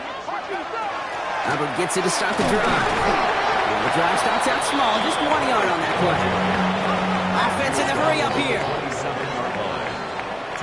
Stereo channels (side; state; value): both; identical; correlation 1.00